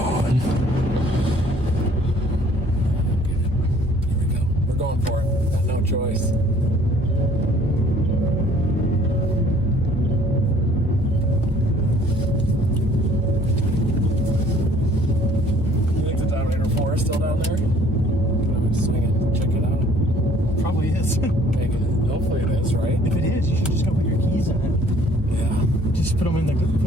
Here we go. We're going for it. Got no choice. You think the Dominator 4 is still down there? Can I swing it and check it out? Probably is. Hopefully it is, right? If it is, you should just go put your keys in it. Yeah. Just put them in the.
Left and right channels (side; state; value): both; normal; correlation 0.56